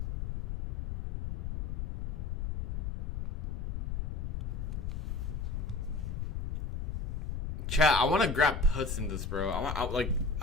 Chat, I want to grab puts in this, bro. I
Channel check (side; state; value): left; noise; rumble, 2 dB below the sound